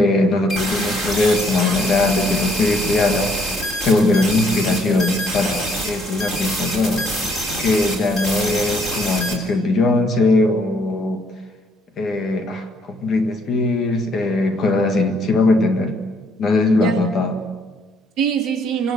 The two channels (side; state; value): both; normal; correlation 0.68